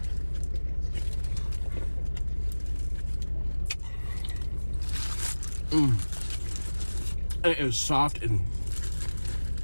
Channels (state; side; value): inverted; both; correlation -1.00